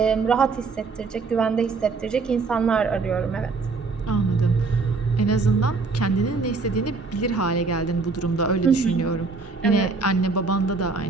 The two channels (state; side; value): quieter; left; 4.2 dB